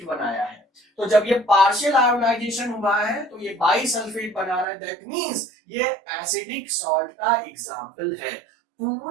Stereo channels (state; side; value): drops out; left; at 4.7 s